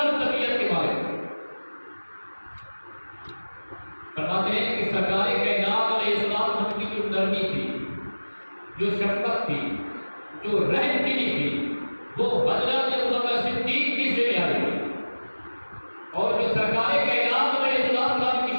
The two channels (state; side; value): inverted; both; correlation -1.00